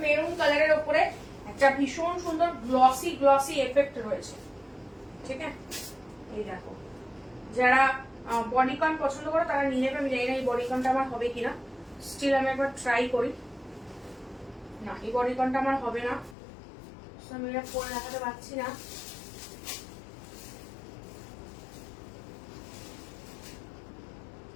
মেরুন কালারের উপরে একটা ভীষণ সুন্দর গ্লসি গ্লসি এফেক্ট রয়েছে, ঠিক আছে। এই দেখো, যারা বডিকন পছন্দ করো তারা নিয়ে নেবে। আমি জানি না এই বডিকনটা আমার হবে কিনা, স্টিল আমি একবার ট্রাই করি। না, এই বডিকনটা আমার হবে না, আমি এটা পরে দেখাতে পারছি না।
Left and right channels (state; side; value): drops out; right; at 16.4 s